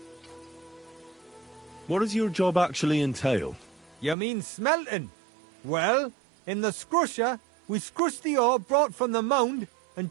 What does your job actually entail? You mean smelting? Well, in the scrusher, we scrush the ore brought from the mound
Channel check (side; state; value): left; drops out; at 4.2 s